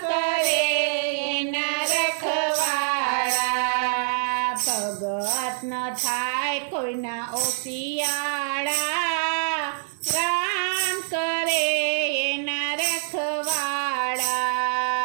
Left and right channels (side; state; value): left; silent; digital silence